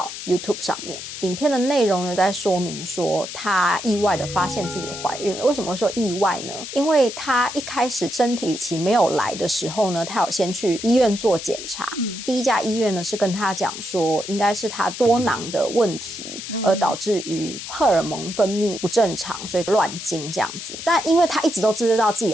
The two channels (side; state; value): left; noise; hiss, 9 dB below the sound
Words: YouTube 上面。影片的内容呢，在说明说她意外的发现自己怀孕了。为什么会说意外呢？因为她一开始生理期没有来的时候呢，她有先去医院做检查。第一家医院呢是跟她讲说，应该是她多囊的问题，而导致于荷尔蒙分泌不正常，所以乱经这样子。但因为她一直都知道自己